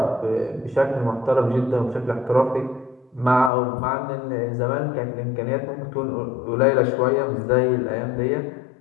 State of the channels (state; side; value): drops out; right; at 3.5 s